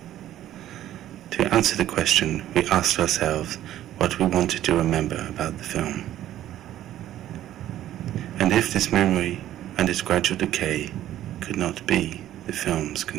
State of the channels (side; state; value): left; quieter; 12.8 dB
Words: To answer the question, we asked ourselves what we wanted to remember about the film. And if this memory and its gradual decay could not be the film's